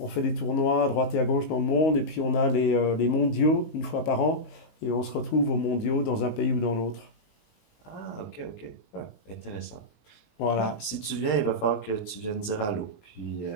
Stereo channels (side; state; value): right; late; 19 ms